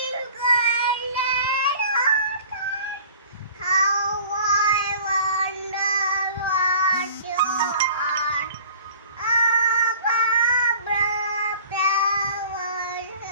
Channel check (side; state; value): both; inverted; correlation -0.47